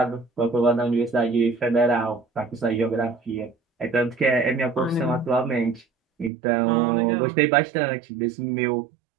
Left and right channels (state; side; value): drops out; left; at 6.3 s